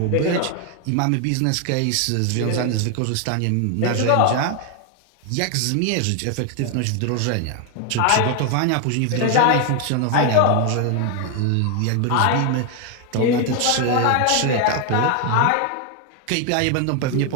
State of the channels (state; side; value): different; both; correlation 0.01